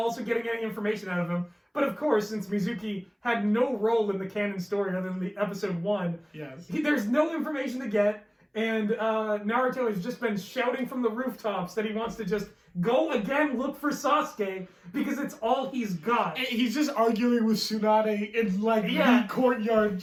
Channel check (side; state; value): both; identical; correlation 1.00